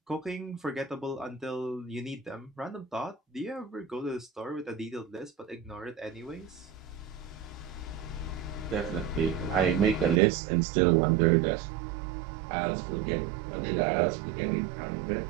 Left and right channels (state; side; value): drops out; left; at 10.2 s